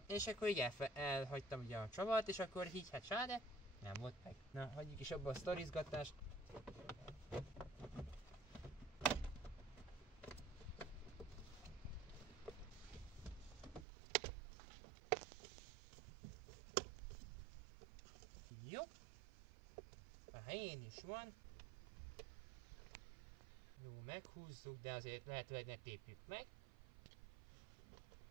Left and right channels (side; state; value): left; drops out; at 13.9 s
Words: és akkor így elhagytam ugye a csavart, és akkor így hát sáde, nem volt meg. Na, hagyjuk is abba a sztorizgatást. helyén is van. Jó, meghúzzuk, de azért lehetőleg ne tépjük meg.